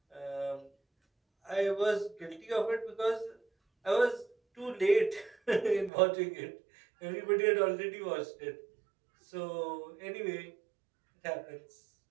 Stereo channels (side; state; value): left; drops out; at 5.9 s